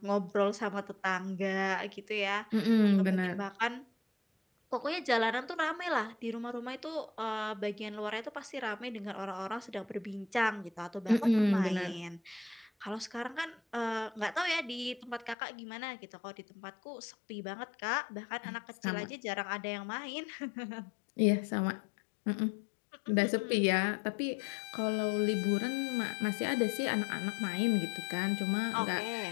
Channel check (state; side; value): drops out; right; at 15.4 s